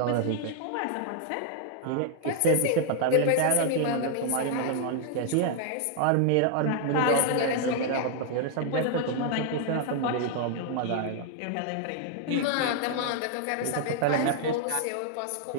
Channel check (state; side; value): different; both; correlation 0.00